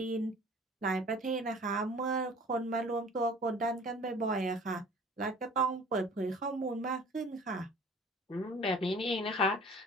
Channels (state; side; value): normal; both; correlation 0.48